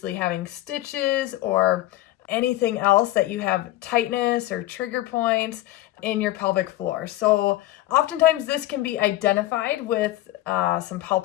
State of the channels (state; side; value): quieter; right; 15.9 dB